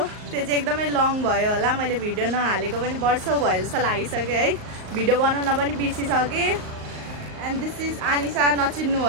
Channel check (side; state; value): left; late; 38 ms